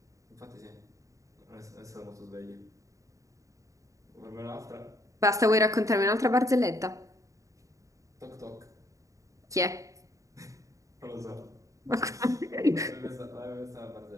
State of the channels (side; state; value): left; late; 0.16 ms